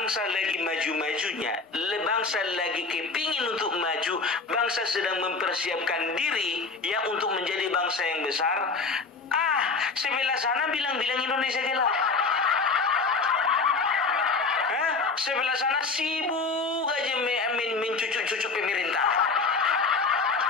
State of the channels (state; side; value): quieter; right; 4.3 dB